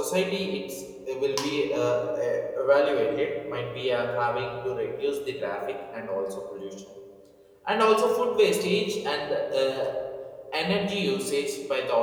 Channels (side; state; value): both; identical; correlation 1.00